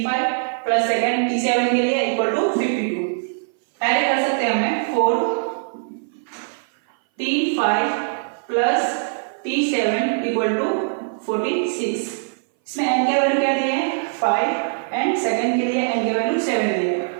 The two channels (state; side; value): silent; left; 60 dB below the other